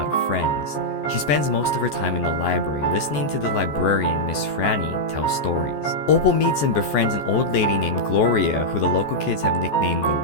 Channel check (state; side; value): late; right; 14 ms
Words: of friends. She spends most of her time in the library, listening to the librarian, Miss Franny, tell stories. Opal meets and befriends an old lady named Gloria, who the local kids have nicknamed the